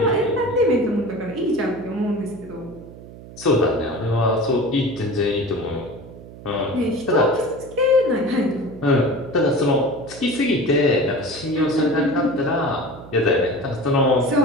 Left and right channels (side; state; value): right; noise; hum, 17 dB below the sound